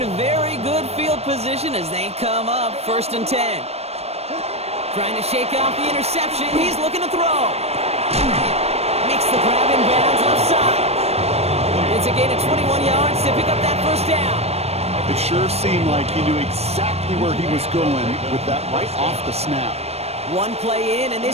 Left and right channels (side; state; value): left; late; 0.31 ms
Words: very good field position as they come up first and 10. Trying to shake off the interception. He's looking to throw. Makes the grab in bounds offside. It's a gain of 21 yards to pick up that first down. It sure seemed like he knew exactly where he was going with that right off the snap. One play in, and